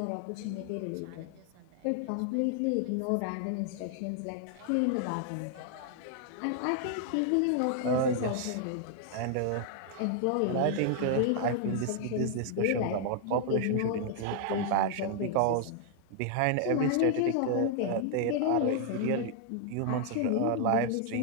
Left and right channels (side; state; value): both; different; correlation 0.00